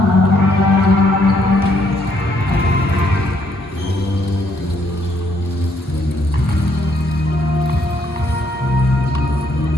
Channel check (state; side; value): normal; both; correlation 0.70